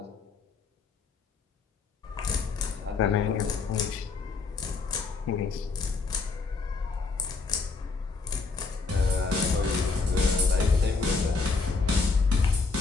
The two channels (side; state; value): right; quieter; 4.3 dB